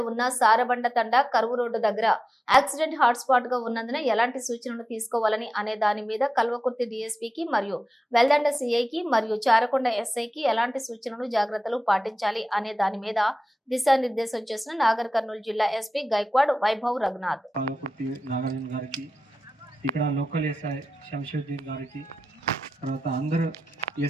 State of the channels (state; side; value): normal; both; correlation 0.94